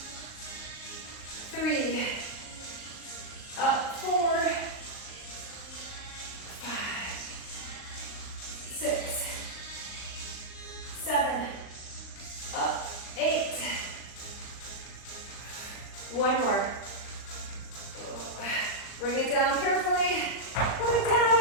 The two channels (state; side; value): late; right; 39 ms